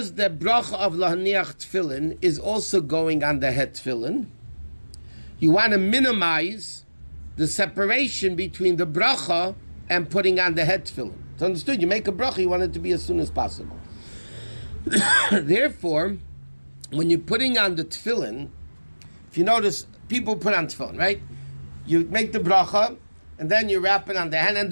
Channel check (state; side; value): inverted; both; correlation -1.00